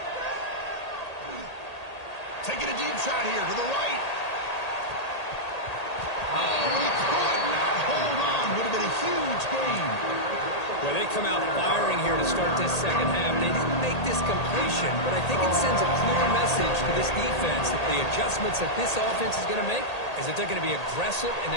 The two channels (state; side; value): late; right; 1.8 ms